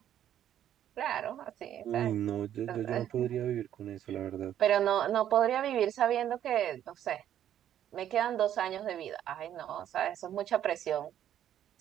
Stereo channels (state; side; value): quieter; left; 10.8 dB